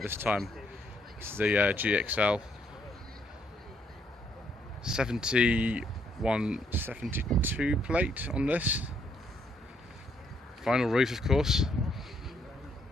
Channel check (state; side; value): normal; both; correlation 0.71